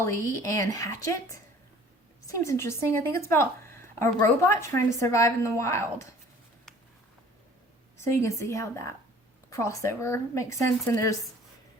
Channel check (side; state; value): both; normal; correlation 0.51